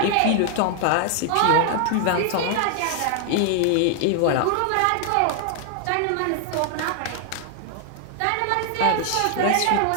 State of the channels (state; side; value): different; both; correlation 0.00